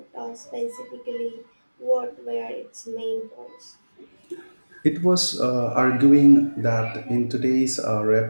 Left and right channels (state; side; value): inverted; both; correlation -1.00